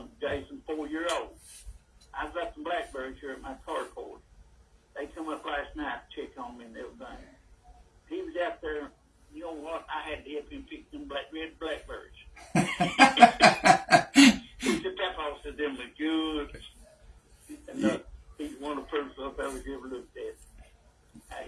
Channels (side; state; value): both; identical; correlation 1.00